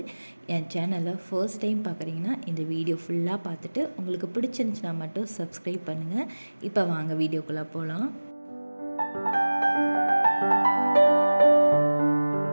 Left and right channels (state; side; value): inverted; both; correlation -1.00